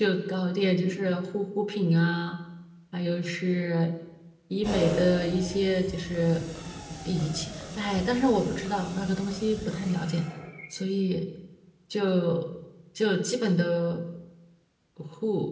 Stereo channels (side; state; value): both; identical; correlation 1.00